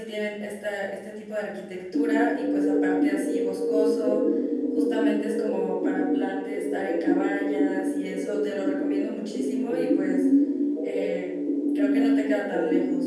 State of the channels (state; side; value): identical; both; correlation 1.00